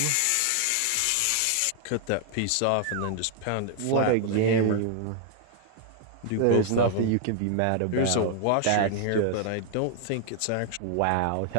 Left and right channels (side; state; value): both; different; correlation 0.00